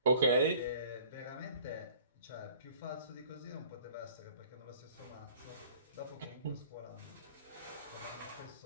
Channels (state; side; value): inverted; both; correlation -0.51